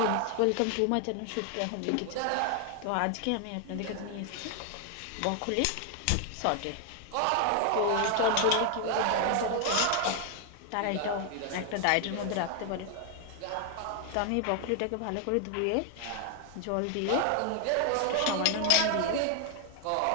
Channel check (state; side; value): different; both; correlation 0.00